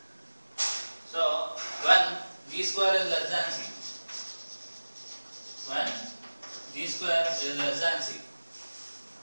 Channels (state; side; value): inverted; both; correlation -1.00